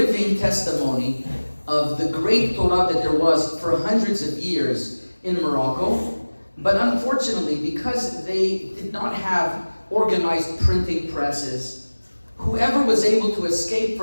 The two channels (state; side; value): inverted; both; correlation -1.00